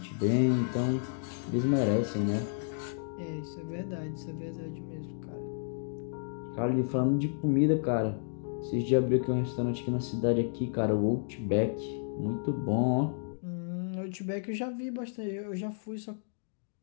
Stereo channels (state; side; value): silent; right; digital silence